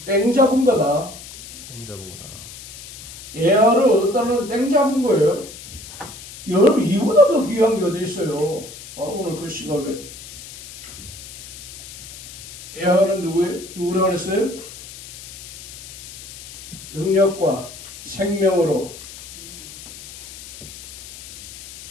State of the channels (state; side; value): noise; left; hiss, 14 dB below the sound